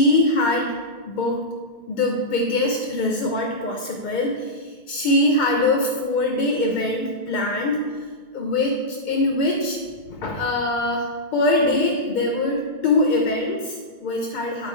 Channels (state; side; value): late; right; 2.2 ms